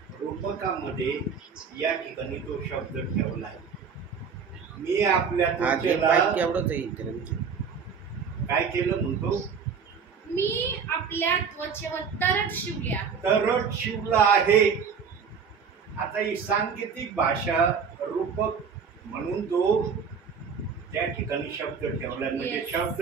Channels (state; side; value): quieter; left; 6.2 dB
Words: रूपकामध्ये या ठिकाणी तो शब्द ठेवलाय. मी आपल्या त्वचेला काय केलं म्हणतो? मी आपल्या त्वचेवर तरट शिवले आहे. तरट शिवला आहे. आता ही सांकेतिक भाषा रूपक म्हणून तो त्या ठिकाणी शब्द ठेवला. म्हणजे